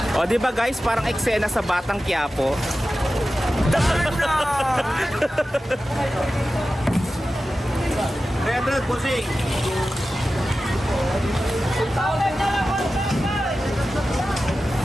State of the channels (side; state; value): both; normal; correlation 0.94